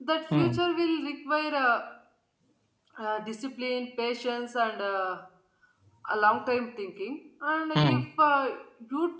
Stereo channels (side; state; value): both; identical; correlation 1.00